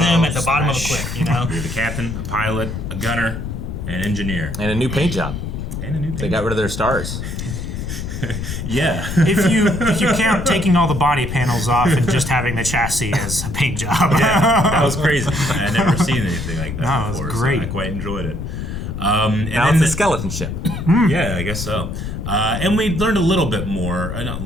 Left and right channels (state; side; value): noise; left; rumble, 6 dB below the sound